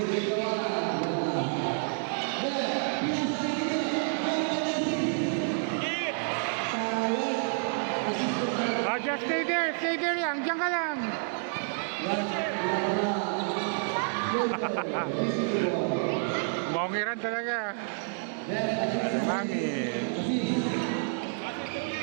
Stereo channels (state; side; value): silent; left; 58 dB below the other